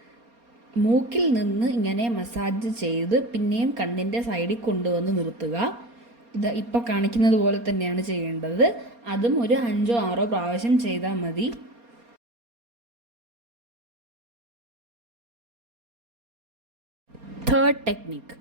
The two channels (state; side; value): late; left; 4.3 ms